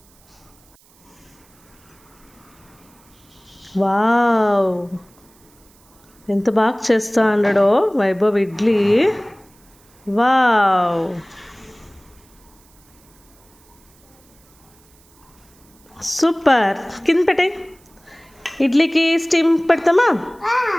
వావ్, ఎంత బాగా చేస్తా అన్నాడో వైభవ్ ఇడ్లీ. Wow, super. కింద పెట్టే ఇడ్లీకి స్టీమ్ పెడతామా?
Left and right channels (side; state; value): right; noise; hiss, 30 dB below the sound